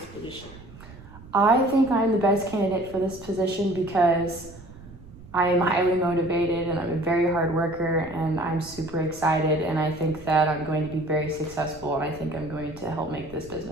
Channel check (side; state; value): right; noise; rumble, 19 dB below the sound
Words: position? I think I'm the best candidate for this position because I am highly motivated and I'm a very hard worker and I'm super excited, and I think that I'm going to be very successful, and I think I'm going to help make this